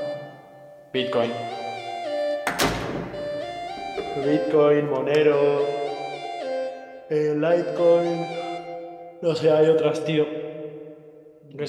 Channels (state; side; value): identical; both; correlation 1.00